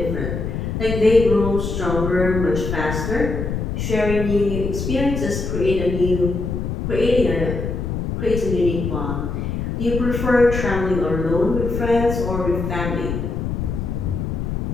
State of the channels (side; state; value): left; noise; rumble, 3 dB below the sound